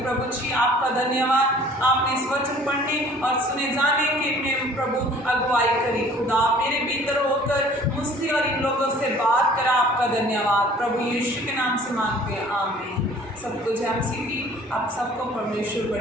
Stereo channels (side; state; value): both; normal; correlation 0.51